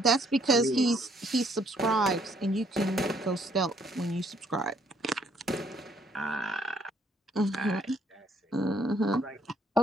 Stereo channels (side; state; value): both; normal; correlation 0.66